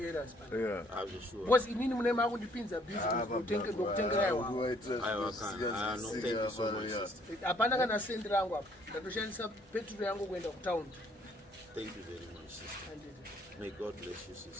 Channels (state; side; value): normal; both; correlation 0.64